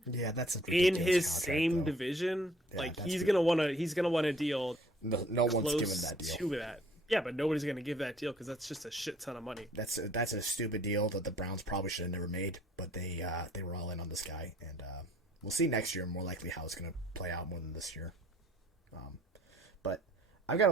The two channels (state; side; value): normal; both; correlation 0.58